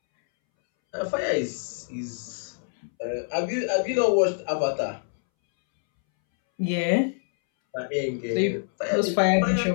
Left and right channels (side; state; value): right; silent; 61 dB below the other